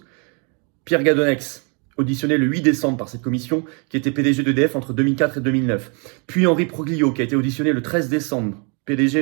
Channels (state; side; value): quieter; left; 35.8 dB